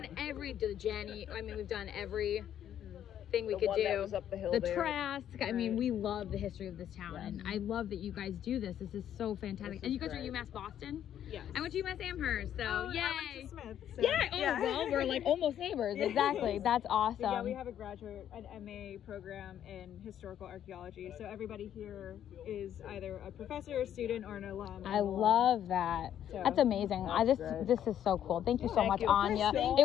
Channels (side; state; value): right; quieter; 10.3 dB